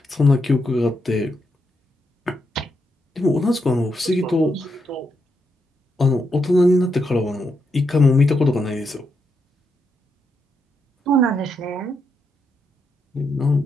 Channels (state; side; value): normal; both; correlation 0.81